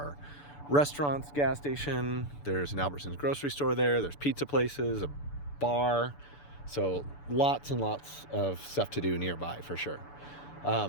restaurants, gas station, there's an Albertsons grocery store there's pizza places, a bar, so lots and lots of stuff to do nearby for sure.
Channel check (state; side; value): late; right; 6.9 ms